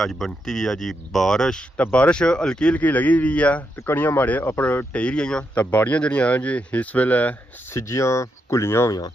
बनती हुई है जी बारिश तो बारिश हल्की हल्की लगी हुई है तो कणियां माड़े अपर टेई रही तो बाड़ियां जड़ियां हैं जी इस वेले सिजियां घुलियां हुई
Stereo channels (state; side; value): normal; both; correlation 0.82